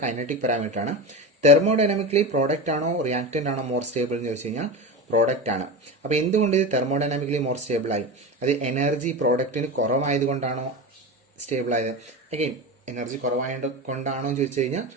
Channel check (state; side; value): normal; both; correlation 0.24